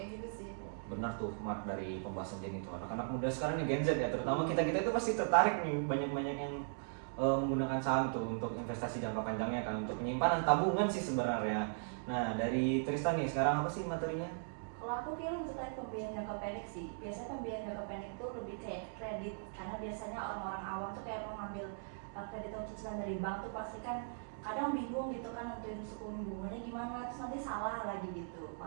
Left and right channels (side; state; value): left; silent; digital silence